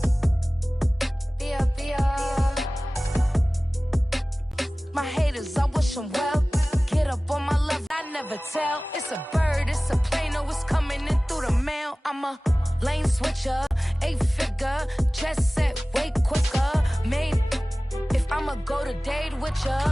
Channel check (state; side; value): normal; both; correlation 0.98